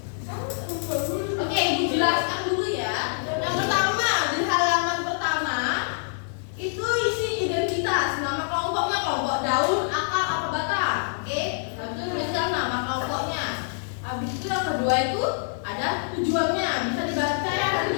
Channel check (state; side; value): silent; right; digital silence